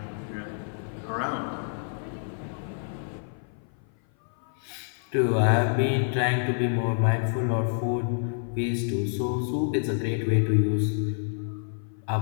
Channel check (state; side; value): silent; right; 56 dB below the other